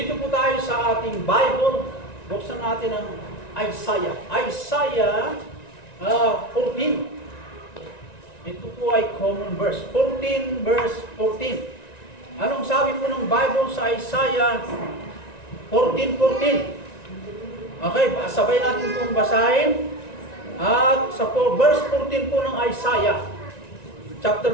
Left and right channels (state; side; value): late; right; 1.9 ms